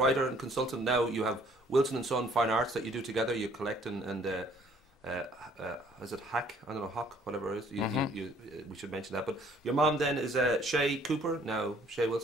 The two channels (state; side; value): normal; both; correlation 0.60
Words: and consultant. Now you have Wilson and Son Fine Arts that you do together. You collect and is it Hack? I don't know, Hawk, whatever it is. We should mention that. But your mom then is Shay Cooper, now Shay